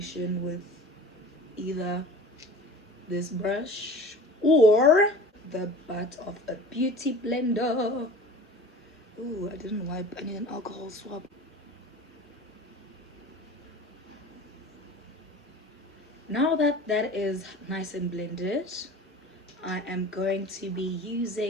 with either this brush or the butt of a beauty blender. Ooh, I didn't wipe. I need an alcohol swab. Now that that is nice and blended, I am going to be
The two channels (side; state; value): both; normal; correlation 0.40